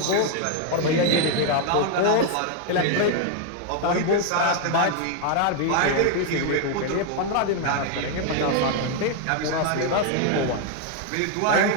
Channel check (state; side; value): different; both; correlation 0.00